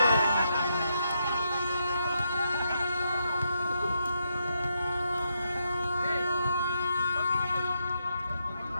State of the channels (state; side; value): inverted; both; correlation -0.80